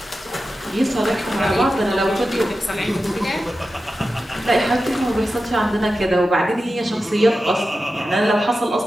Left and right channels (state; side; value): normal; both; correlation 0.92